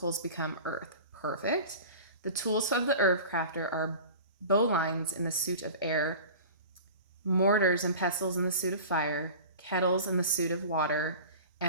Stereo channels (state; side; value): inverted; both; correlation -0.37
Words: become earth. Perfect. The tools of the Herbcrafter are bowlines in the suit of air, mortars and pestles in the suit of fire, kettles in the suit of water,